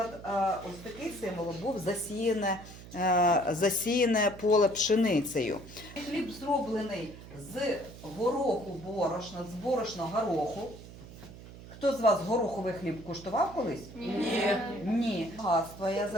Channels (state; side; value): noise; right; hum, 16 dB below the sound